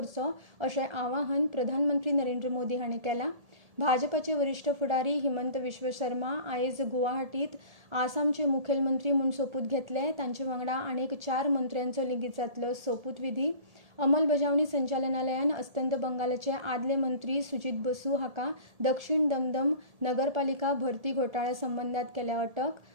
अशें आवाहन प्रधानमंत्री नरेंद्र मोदी हांणी केलां। भाजपाचे वरिष्ठ फुडारी हिमंत विश्व शर्मा आयज गुवाहाटीत आसामचे मुखेलमंत्री म्हूण सोपूत घेतले। तांचे वांगडा आनीक 4 मंत्र्यांचो लेगीत जातलो सोपूत विधी। अंमलबजावणी संचालनालयान अस्तंत बंगालचे आदले मंत्री सुजित बसू हाका दक्षिण दमदम नगरपालिका भरती घोटाळ्या संबंधात केल्या अटक.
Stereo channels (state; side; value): late; left; 1.7 ms